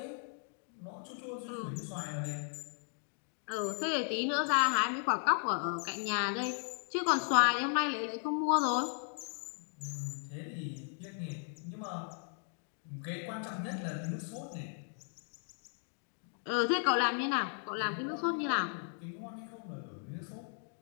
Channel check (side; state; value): right; silent; 54 dB below the other